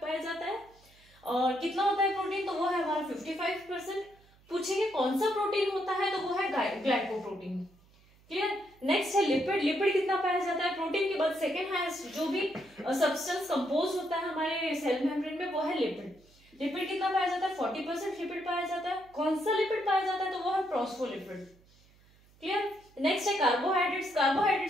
जाता है। और कितना होता है प्रोटीन, तो वो है हमारा 55%। पूछेंगे कौन सा प्रोटीन होता है, तो वो है ग्लाइकोप्रोटीन। क्लियर, नेक्स्ट है लिपिड, लिपिड कितना पाया जाता है, प्रोटीन के बाद सेकंड हाईएस्ट जो भी सब्सटेंस कंपोज होता है हमारे सेल मेम्ब्रेन में वो है लिपिड। लिपिड कितना पाया जाता है, 40% लिपिड पाया जाता है। कौन सा लिपिड पाया जाता है, तो वो है फॉस्फोलिपिड। क्लियर, नेक्स्ट है कार्बोहाइड्रेट्स,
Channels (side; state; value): right; noise; hum, 29 dB below the sound